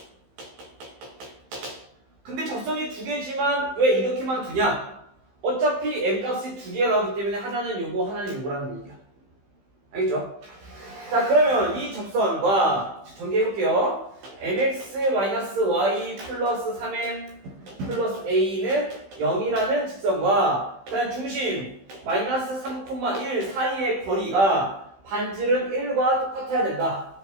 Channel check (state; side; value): late; left; 15 ms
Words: 근데 접선이 두 개지만 왜 이렇게만 두냐? 어차피 m 값이 두 개가 나오기 때문에 하나는 요거 하나는 요거라는 얘기야. 알겠죠? 자, 그러면 이 접선과 전개해볼게요. mx-y 플러스 3m 플러스 a는 0이라는 직선과 그다음 중심 마이너스 3,1 사이의 거리가 반지름 1과 똑같아야 된다.